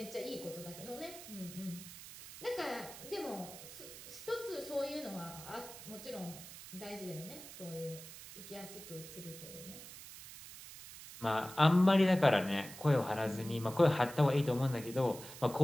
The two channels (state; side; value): noise; right; hiss, 14 dB below the sound